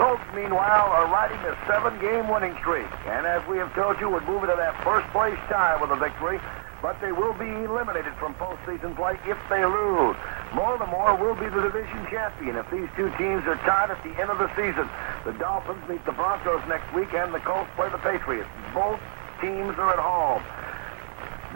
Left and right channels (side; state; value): left; silent; digital silence